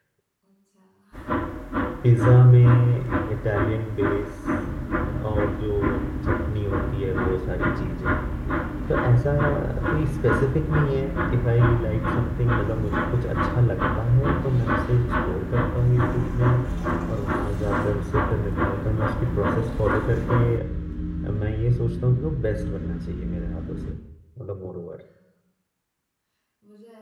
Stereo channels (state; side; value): identical; both; correlation 1.00